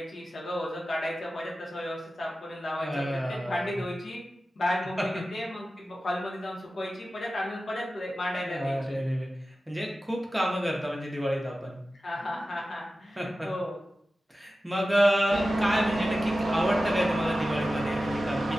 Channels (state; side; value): normal; both; correlation 0.94